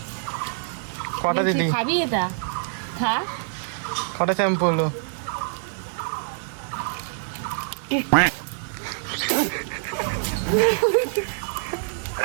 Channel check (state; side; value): silent; left; digital silence